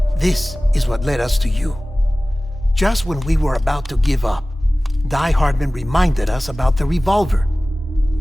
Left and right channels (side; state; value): both; normal; correlation 0.98